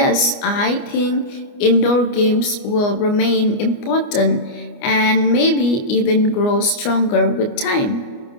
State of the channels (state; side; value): late; right; 29 ms